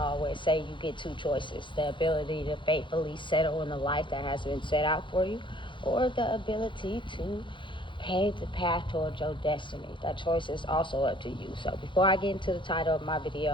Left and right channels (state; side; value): late; right; 0.23 ms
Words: say, you get two choices: the ability to faithfully settle in the life that has been set out for you, or the ability to pave the path towards your destiny. That choice is also up to you. So before I get into the title of my